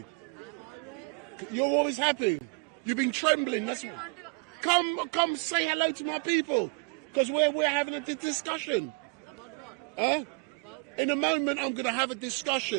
You're always happy. You've been trembling. Come say hello to my people, because we're having a discussion. About what? Huh? In a moment, I'm having a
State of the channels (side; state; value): left; quieter; 34.4 dB